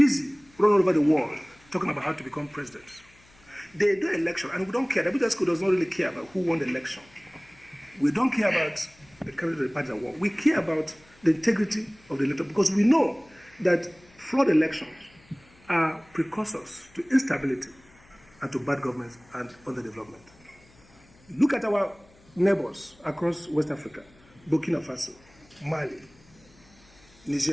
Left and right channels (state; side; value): noise; left; hum, 28 dB below the sound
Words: running all over the world talking about how to become presidents. They do election, and we don't care. The Abuja school does not really care about who won the election. We don't care about the candidate of the party that won. We care about the integrity of the elector, because we know that flawed elections are precursors to instability and to bad government and underdevelopment. Look at our neighbors across West Africa, Burkina Faso, Mali,